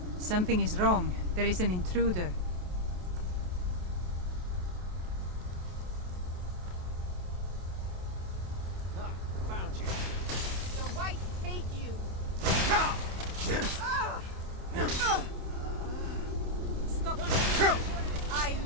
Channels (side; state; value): left; late; 28 ms